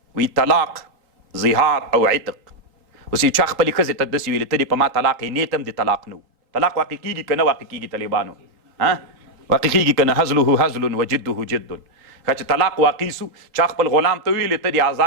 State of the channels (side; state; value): left; late; 3.8 ms